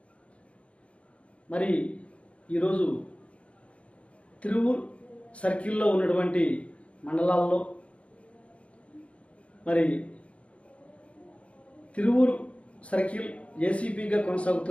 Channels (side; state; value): right; late; 0.062 ms